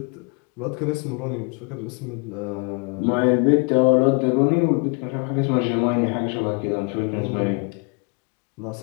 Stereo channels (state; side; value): quieter; right; 35.1 dB